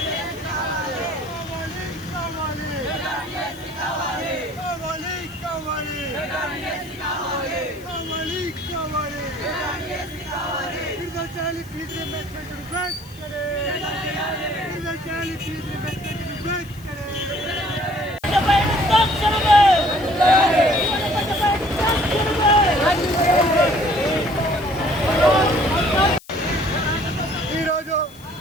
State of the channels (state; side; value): noise; left; hiss, 24 dB below the sound